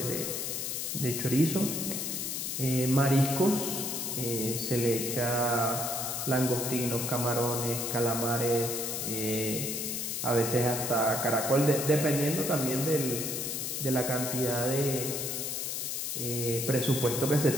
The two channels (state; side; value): noise; left; hiss, 3 dB below the sound